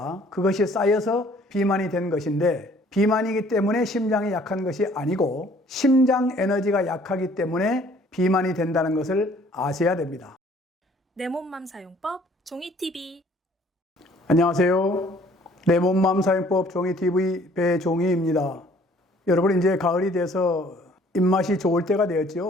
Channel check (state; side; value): normal; both; correlation 0.57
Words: 그것이 쌓여서 비만이 된 것인데, 비만이기 때문에 심장이 약한 것이 아니고 심장 에너지가 약하기 때문에 비만이 된다는 것을 아셔야 됩니다. 내 몸맘 사용법 종이TV. 안녕하세요. 내 몸맘 사용법 종이TV 배종희입니다. 여러분, 이제 가을이 돼서 입맛이 좋을 때가